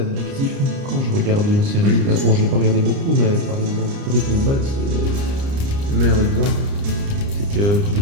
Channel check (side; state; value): left; late; 29 ms